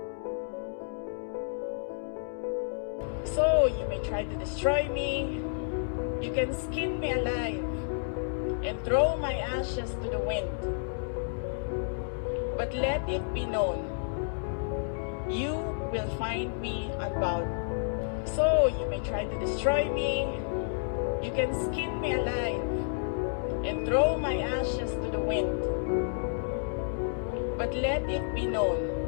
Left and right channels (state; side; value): silent; right; digital silence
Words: So you may try to destroy me, you can skin me alive and throw my ashes to the wind. But let it be known, you will find me unbowed. So you may try to destroy me, you can skin me alive and throw my ashes to the wind. But let it be known,